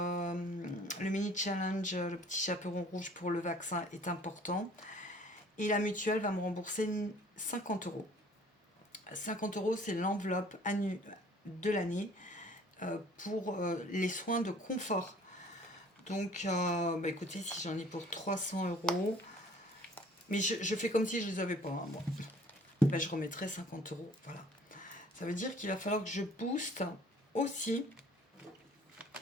mini challenge, le petit chaperon rouge pour le vaccin est important. Et la mutuelle va me rembourser 50 €. 50 €, c'est l'enveloppe de l'année pour les soins de confort. Donc, bah écoutez, si j'en ai pour 300 €, mais je fais comme si je les avais pas, hein, moi. Bah, je remettrai 50 €. Voilà. Ça veut dire qu'il va falloir que je booste aussi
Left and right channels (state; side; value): normal; both; correlation 0.53